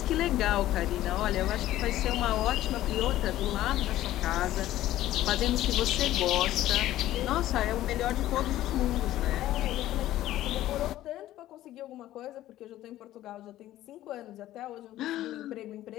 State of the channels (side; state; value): right; quieter; 14.2 dB